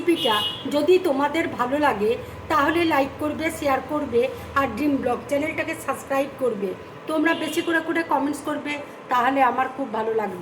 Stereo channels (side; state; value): both; identical; correlation 1.00